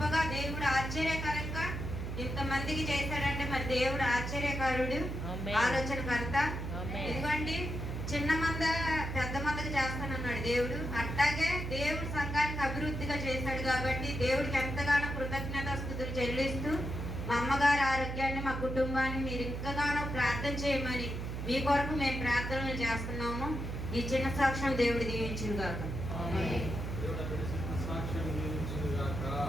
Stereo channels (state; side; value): noise; right; hum, 4 dB below the sound